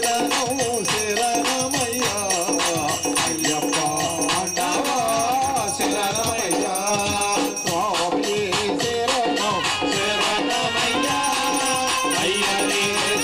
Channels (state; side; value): identical; both; correlation 1.00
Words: శరణమయ్యా అయ్యప్ప అండవా శరణమయ్యా స్వామి శరణం శరణమయ్యా అయ్యనే